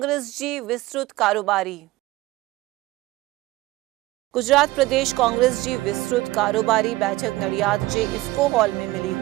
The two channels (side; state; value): left; quieter; 18.8 dB